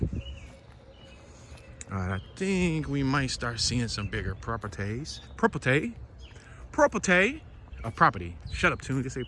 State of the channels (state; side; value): identical; both; correlation 1.00